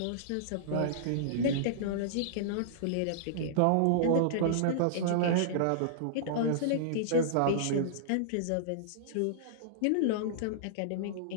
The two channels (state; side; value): different; both; correlation -0.02